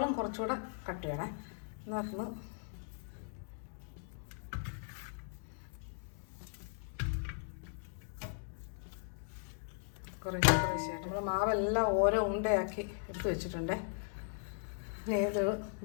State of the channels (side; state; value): right; silent; digital silence